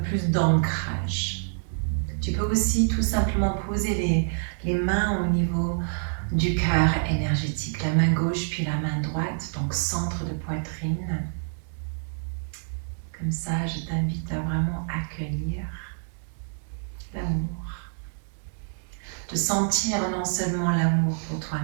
d'ancrage. Tu peux aussi tout simplement poser les mains au niveau du cœur énergétique, la main gauche puis la main droite, donc centre de poitrine. Comme ça, je t'invite à vraiment accueillir l'amour. De sentir non seulement l'amour pour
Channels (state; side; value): silent; left; digital silence